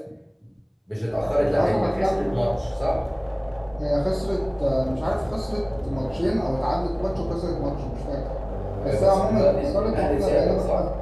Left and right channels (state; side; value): identical; both; correlation 1.00